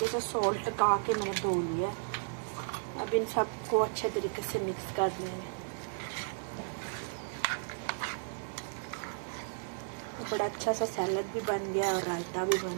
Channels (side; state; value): left; silent; digital silence